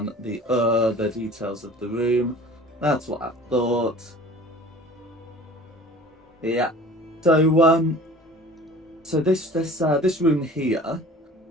details of the room. That's what I thought. Yeah. So this room here,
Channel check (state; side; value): normal; both; correlation 0.44